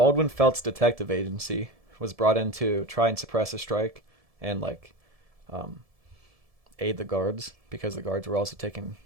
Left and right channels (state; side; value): late; left; 1.7 ms